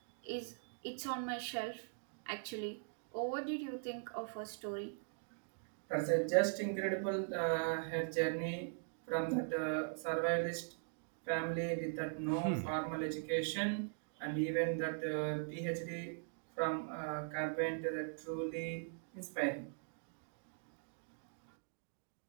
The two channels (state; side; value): silent; left; digital silence